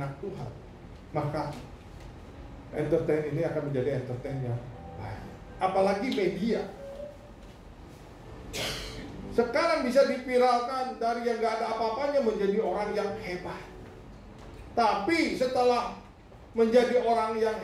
Tuhan, maka entertain ini akan menjadi entertain yang baik. Apalagi media sekarang bisa dipiralkan dari yang gak ada apa-apanya menjadi orang yang hebat. Tapi setelah menjadi orang yang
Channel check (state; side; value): identical; both; correlation 1.00